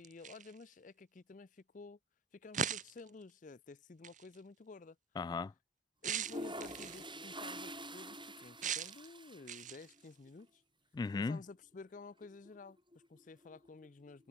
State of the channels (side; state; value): both; normal; correlation 0.36